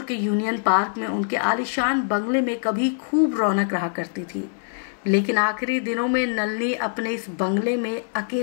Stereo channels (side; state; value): right; silent; digital silence